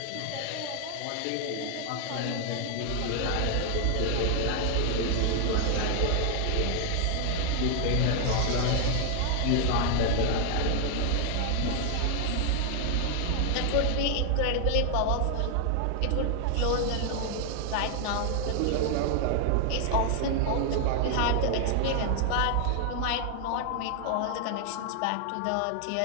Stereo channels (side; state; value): both; different; correlation 0.00